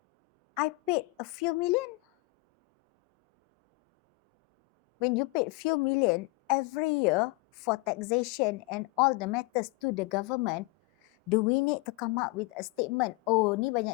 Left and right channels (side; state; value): right; quieter; 24.5 dB